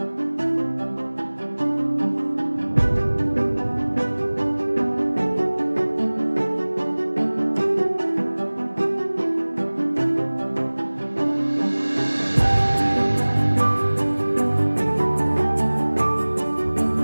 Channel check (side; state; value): both; inverted; correlation -1.00